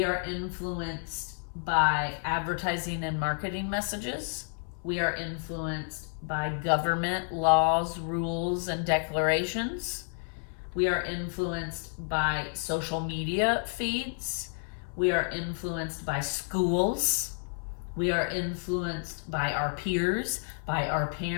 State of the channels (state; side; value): silent; right; 58 dB below the other